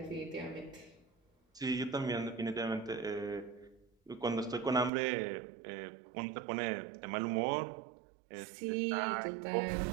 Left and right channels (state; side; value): drops out; left; at 4.9 s